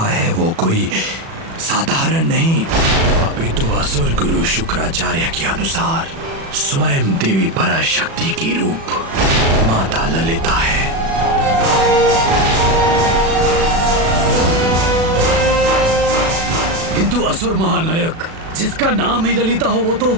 है वो कोई साधारण नहीं, अपितु असुर गुरु शुक्राचार्य के अनुसार स्वयं देवी पराशक्ति की रूप माता ललिता है। किंतु असुर महानायक, जिसका नाम ही ललिता हो वो तो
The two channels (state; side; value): late; left; 36 ms